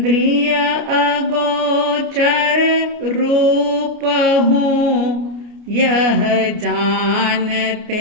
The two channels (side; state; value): left; late; 29 ms